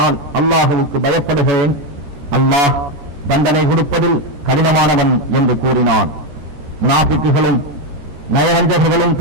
நான் அல்லாஹுவுக்கு பயப்படுகிறேன், அல்லாஹ் தண்டனை கொடுப்பதில் கடினமானவன் என்று கூறினான். முனாஃபிக்குகளும் நயவஞ்சகர்களும்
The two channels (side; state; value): left; late; 13 ms